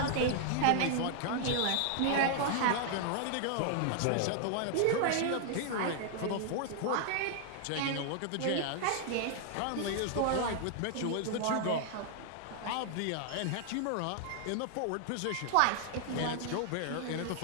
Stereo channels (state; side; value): different; both; correlation 0.00